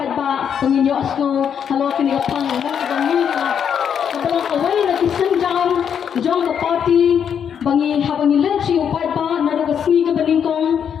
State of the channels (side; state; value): right; quieter; 8.0 dB